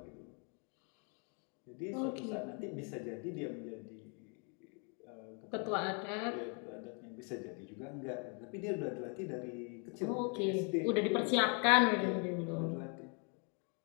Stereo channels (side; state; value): right; quieter; 38.1 dB